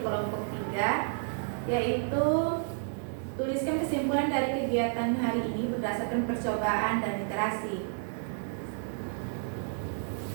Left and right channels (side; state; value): left; silent; 57 dB below the other